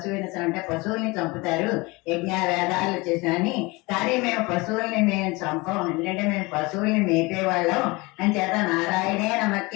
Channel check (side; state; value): right; quieter; 24.4 dB